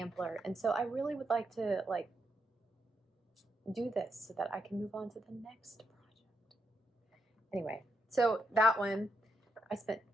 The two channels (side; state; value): both; normal; correlation 0.81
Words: and so I really would like to like do this so that I can move on to the next project. Anyway, so that one, I spent